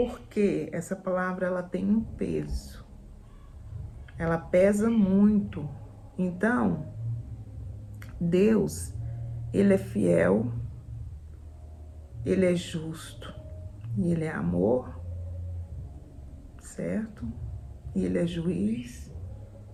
essa palavra, ela tem um peso. Ela pesa muito. Então, Deus, Ele é fiel, Ele é justo, e Ele é amor, certo? E Ele é juiz.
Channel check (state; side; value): identical; both; correlation 1.00